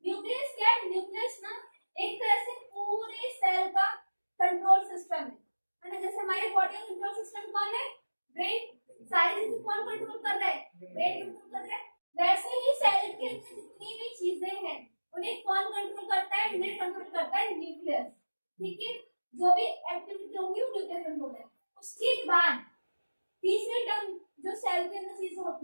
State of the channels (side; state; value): both; inverted; correlation -1.00